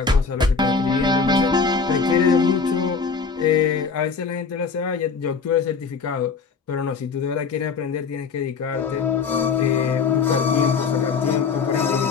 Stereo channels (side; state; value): right; quieter; 5.3 dB